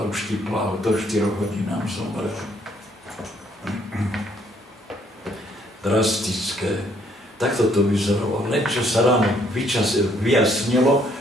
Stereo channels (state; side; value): normal; both; correlation 0.66